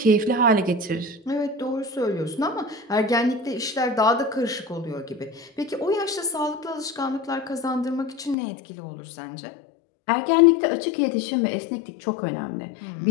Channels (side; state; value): right; drops out; at 8.3 s